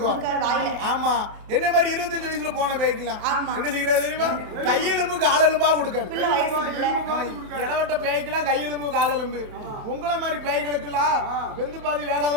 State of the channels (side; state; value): left; late; 29 ms